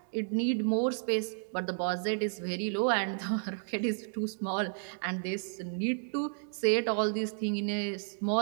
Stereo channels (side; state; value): left; silent; digital silence